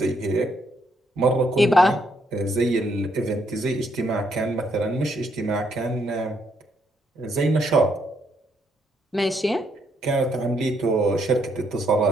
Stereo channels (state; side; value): normal; both; correlation 0.73